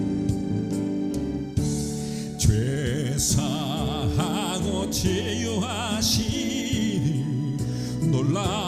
죄 사하고 치유하시니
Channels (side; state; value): both; identical; correlation 1.00